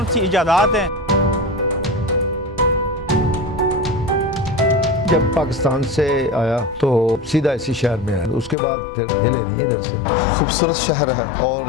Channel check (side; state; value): right; drops out; at 8.6 s